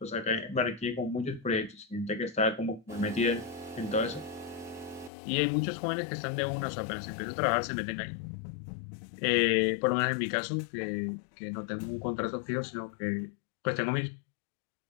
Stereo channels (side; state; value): right; drops out; at 5.1 s